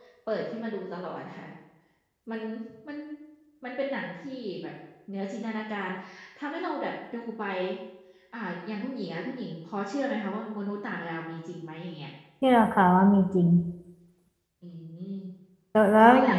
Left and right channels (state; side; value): identical; both; correlation 1.00